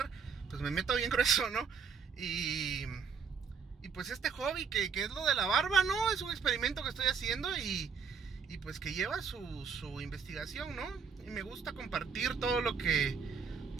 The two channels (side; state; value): left; quieter; 6.1 dB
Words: Pues me meto bien grueso, ¿no? Y pues este hobby que es lo de la barba, ¿no? Es un experimento que estoy haciendo y pues que lleva su investigación, ¿no? Y me gusta compartir todo lo que